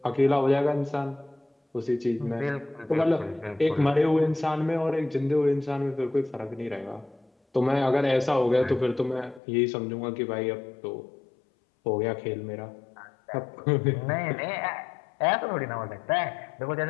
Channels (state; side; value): drops out; right; at 9.4 s